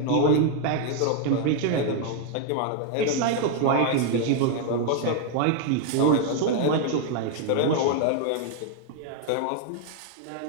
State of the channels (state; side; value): different; both; correlation 0.00